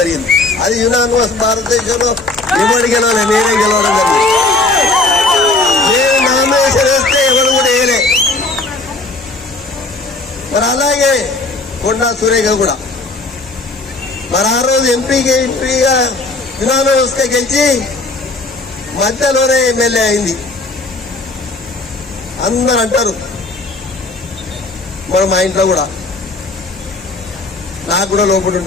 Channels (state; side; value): quieter; right; 3.2 dB